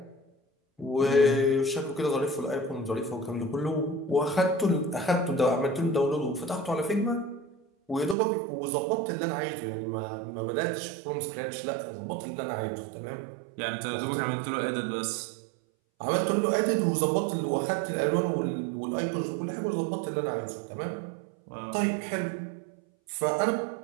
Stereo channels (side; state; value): left; drops out; at 8.2 s